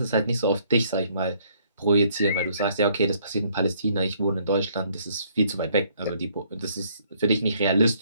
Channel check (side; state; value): both; inverted; correlation -0.65